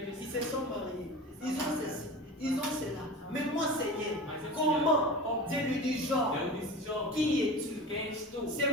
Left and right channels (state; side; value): normal; both; correlation 0.32